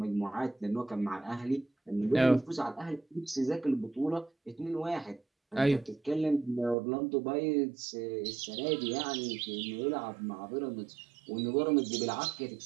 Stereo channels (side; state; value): left; drops out; at 6.8 s